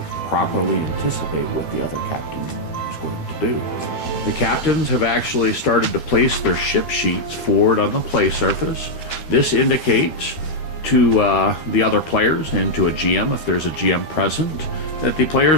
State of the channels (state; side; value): late; right; 13 ms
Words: properly anticipate what the other captain is going to do. The captains have actually started to place their ship sheets forward on the play surface. This indicates to the other players and to a GM, if there's a GM present, that the